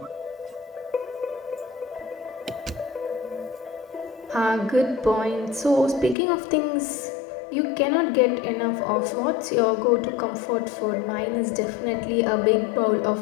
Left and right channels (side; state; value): right; drops out; at 6.2 s